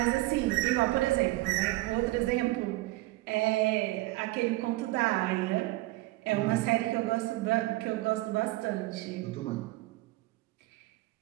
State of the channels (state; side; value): quieter; left; 19.2 dB